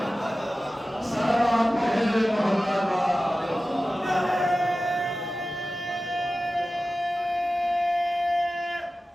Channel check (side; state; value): both; normal; correlation 0.95